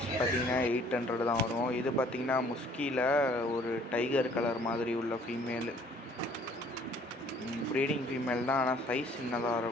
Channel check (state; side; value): normal; both; correlation 0.57